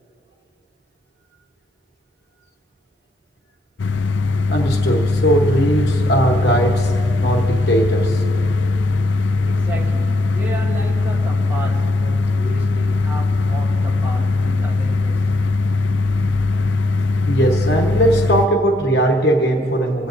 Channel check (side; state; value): both; normal; correlation 0.75